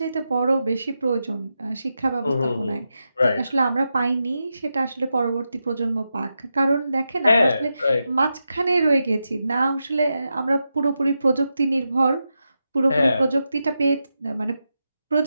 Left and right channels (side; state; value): both; inverted; correlation -0.88